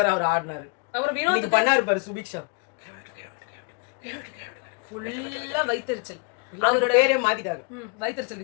அவர் ஆடினாரு. அப்புறம் வினோத் பண்ணாரு பாரு சுபிக்ஷா, ஃபுல்லா வைத்தறிச்சல். அவரோட பேரே மாத்திட்டாங்க, வைத்தறிச்சல்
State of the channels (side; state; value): right; quieter; 35.9 dB